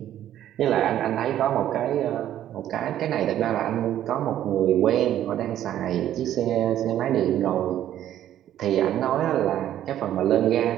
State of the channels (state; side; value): quieter; left; 11.8 dB